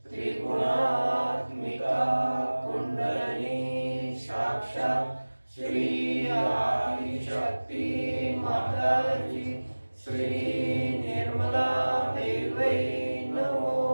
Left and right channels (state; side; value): inverted; both; correlation -1.00